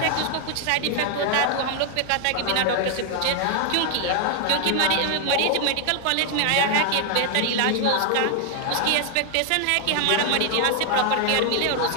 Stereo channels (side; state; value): both; different; correlation 0.00